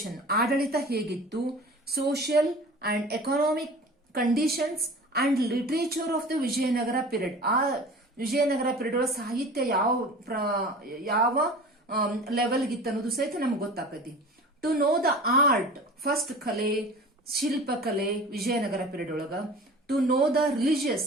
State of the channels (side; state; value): both; normal; correlation 0.39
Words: ಆಡಳಿತ ಹೇಗಿತ್ತು, social and economic conditions and literature of the Vijayanagara period. ಆ ವಿಜಯನಗರ ಪೀರಿಯಡ್ ಒಳಗೆ ಸಾಹಿತ್ಯ ಯಾವ ಲೆವೆಲ್ಗಿತ್ತು ಅನ್ನೋದು ಸಹಿತ ನಮ್ಗೆ ಗೊತ್ತಾಕತಿ. To know the art, first kale, shilpa kale, Vijayanagara period olaga. To know the religious